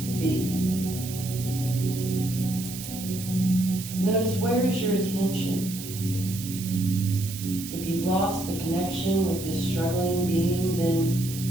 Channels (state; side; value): noise; right; hiss, 10 dB below the sound